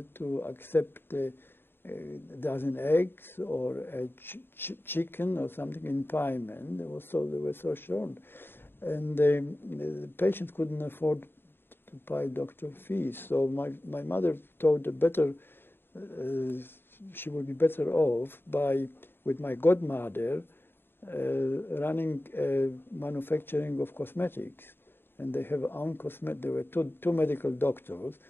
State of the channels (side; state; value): right; late; 0.10 ms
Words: to accept a dozen eggs or a chicken or something in payment. They were so short, and the patients couldn't afford to pay doctor fees. So my mother thought the better. She would be better off with my godmother running manufacturing of cosmetics, and they have own cosmetic. There were two medical doctors